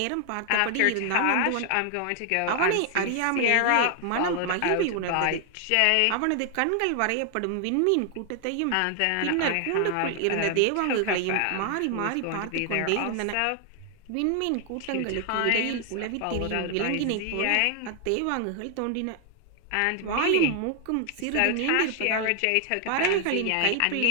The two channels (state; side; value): different; both; correlation 0.00